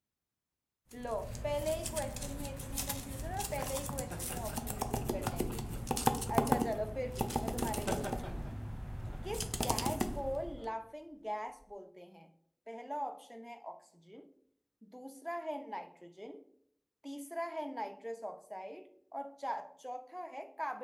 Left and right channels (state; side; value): identical; both; correlation 1.00